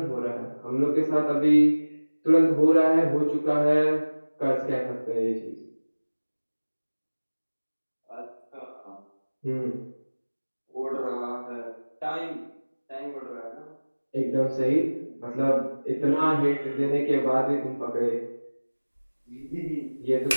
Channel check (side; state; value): both; inverted; correlation -1.00